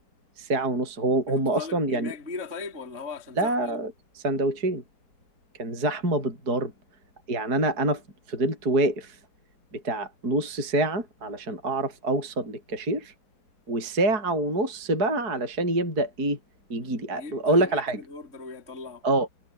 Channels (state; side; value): late; left; 4.6 ms